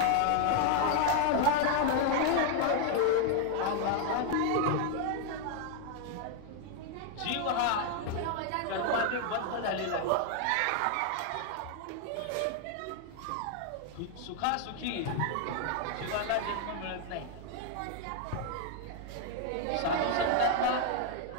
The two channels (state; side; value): different; both; correlation 0.00